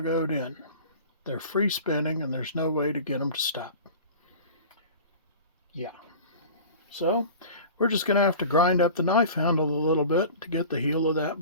in. They're free spinning and there's no way to get them to stop. Yeah. So we're just going to have to grind up the knife handle a little bit to get the heel of that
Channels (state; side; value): inverted; both; correlation -0.39